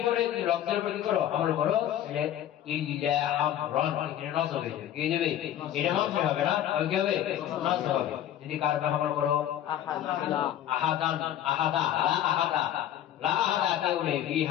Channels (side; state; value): right; quieter; 11.4 dB